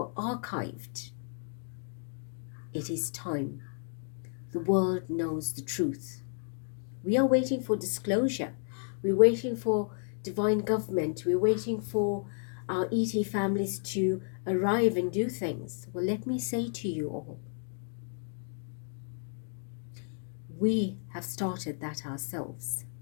archived. It is time. The world knows the truth. We are waiting for disclosure. We're waiting for divine government. We're waiting for our ET families to arrive and do things. Well, let me say to you all, we have started that ourselves.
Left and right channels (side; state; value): right; silent; 56 dB below the other